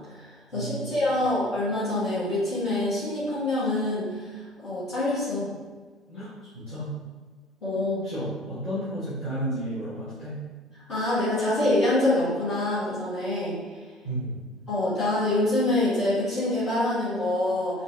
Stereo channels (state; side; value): normal; both; correlation 0.48